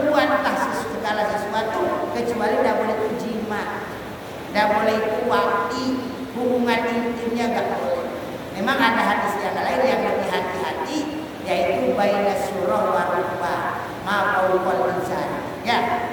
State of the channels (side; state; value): both; identical; correlation 1.00